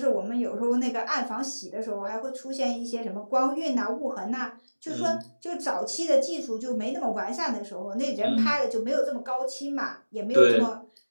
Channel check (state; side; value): inverted; both; correlation -1.00